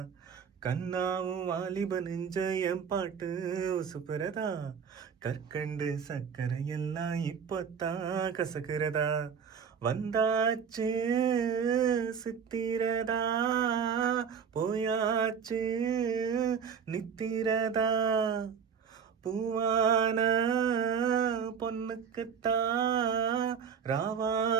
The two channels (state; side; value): quieter; left; 6.9 dB